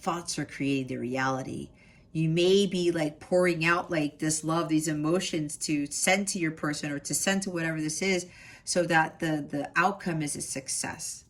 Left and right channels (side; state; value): both; identical; correlation 1.00